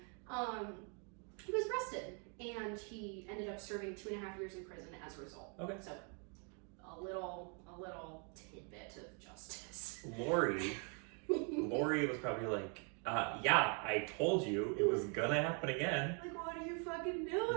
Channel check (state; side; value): quieter; left; 37.5 dB